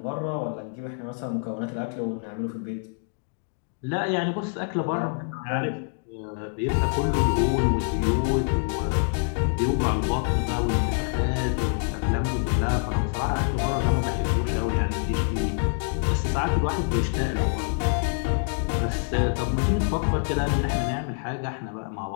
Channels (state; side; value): silent; right; 61 dB below the other